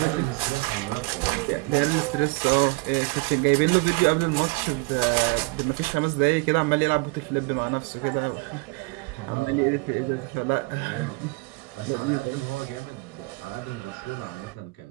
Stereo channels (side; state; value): left; quieter; 27.4 dB